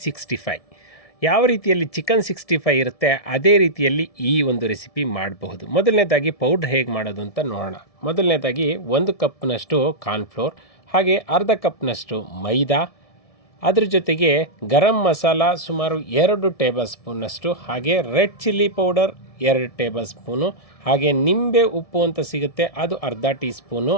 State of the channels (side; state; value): right; late; 1.7 ms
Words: 65. ಯಾವ ರೀತಿಯಲ್ಲಿ ಚಿಕನ್ 65 ಇರುತ್ತೆ ಅದೇ ರೀತಿಯಲ್ಲಿ ಈ ಒಂದು ರೆಸಿಪಿ ಮಾಡಬಹುದು. ಮೊದಲನೇದಾಗಿ ಪೌಡ್ರ್ ಹೇಗೆ ಮಾಡೋದು ಅಂತ ನೋಡೋಣ. ಮೊದಲನೇದಾಗಿ 1 ಕಪ್ನಷ್ಟು ಕಾರ್ನ್ಫ್ಲೋರ್, ಹಾಗೆ ಅರ್ಧ ಕಪ್ನಷ್ಟು ಮೈದಾ, ಅದ್ರ ಜೊತೆಗೆ ಗರಂ ಮಸಾಲ ಸುಮಾರು 2 ಟೇಬಲ್ ಸ್ಪೂನಷ್ಟು, ಹಾಗೆ red chilli powder 2 table spoon, ಹಾಗೆ ನಿಂಬೆ ಉಪ್ಪು ಅಂತ ಸಿಗುತ್ತೆ ಅದು ಅರ್ಧ ಟೀ ಸ್ಪೂನು,